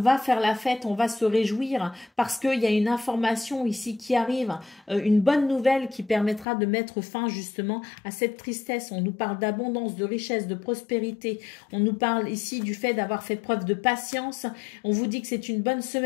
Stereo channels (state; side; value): drops out; right; at 6.5 s